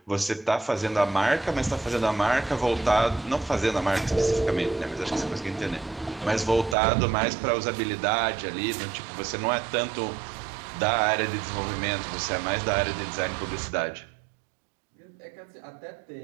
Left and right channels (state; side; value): drops out; left; at 6.8 s